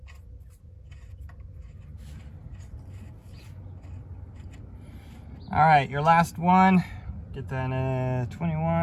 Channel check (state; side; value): identical; both; correlation 1.00